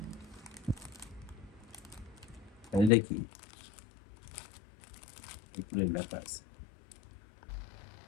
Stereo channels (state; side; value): drops out; right; at 2.9 s